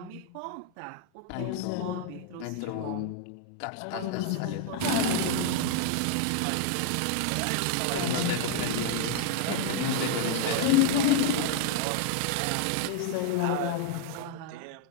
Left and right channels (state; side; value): different; both; correlation 0.00